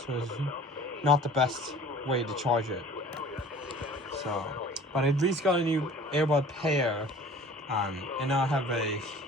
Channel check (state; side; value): normal; both; correlation 0.46